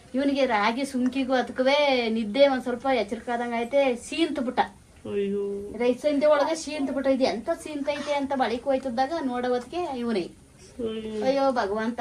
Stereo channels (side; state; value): both; identical; correlation 1.00